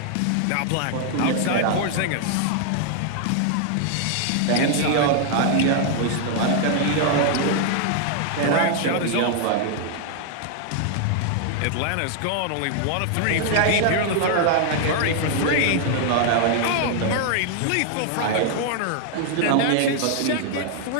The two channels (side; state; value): both; different; correlation 0.00